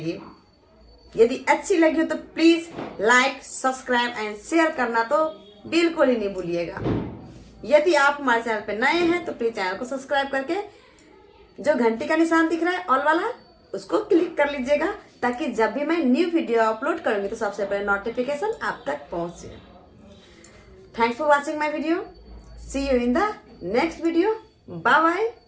यदि अच्छी लगी हो तो please like, subscribe and share करना तो बिल्कुल ही नहीं भूलिएगा। यदि आप हमारे चैनल पर नए हैं तो प्लीज चैनल को सब्सक्राइब करके जो घंटी का निशान दिख रहा है ऑल वाला उसको क्लिक कर लीजिएगा, ताकि जब भी मैं न्यू वीडियो अपलोड करूंगी तो सबसे पहले नोटिफिकेशन आप तक पहुंचे। Thanks for watching my video. See you in the next video. Bye bye,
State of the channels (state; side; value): identical; both; correlation 1.00